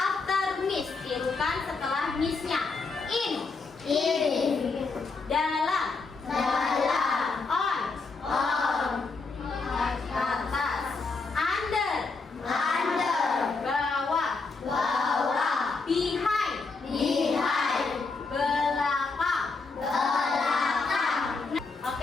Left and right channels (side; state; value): right; quieter; 4.2 dB